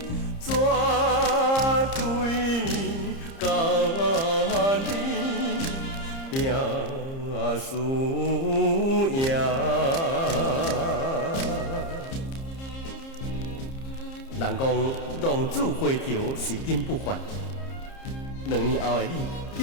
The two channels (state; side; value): late; right; 30 ms